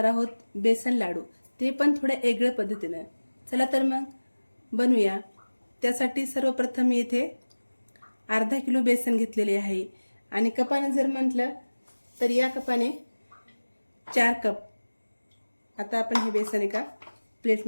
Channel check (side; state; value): both; inverted; correlation -1.00